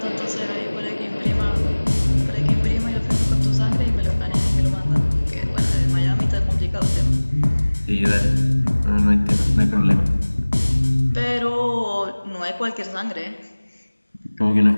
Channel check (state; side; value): inverted; both; correlation -1.00